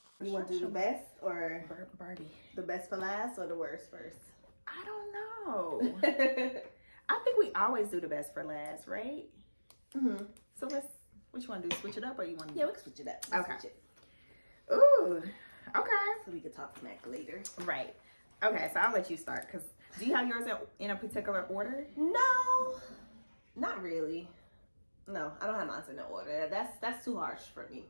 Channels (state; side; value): inverted; both; correlation -1.00